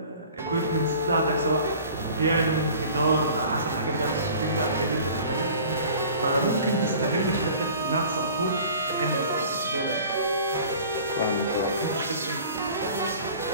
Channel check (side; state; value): both; inverted; correlation -0.45